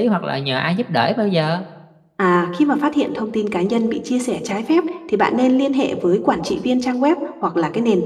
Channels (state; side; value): identical; both; correlation 1.00